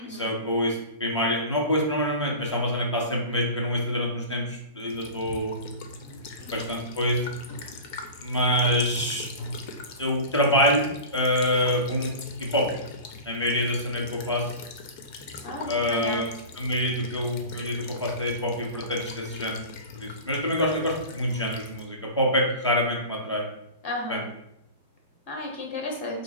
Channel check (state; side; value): inverted; both; correlation -0.33